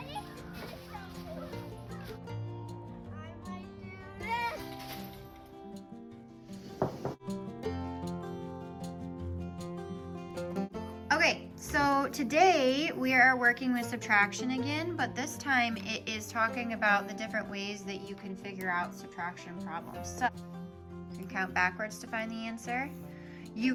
Okay, so today we are working with subtraction again, but this time it is talking about the different ways that you can figure out subtraction problems. So you can count backwards to find the answer.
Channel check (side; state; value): both; identical; correlation 1.00